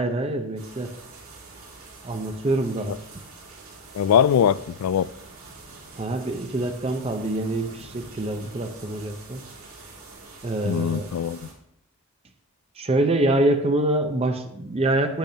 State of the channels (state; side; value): normal; both; correlation 0.25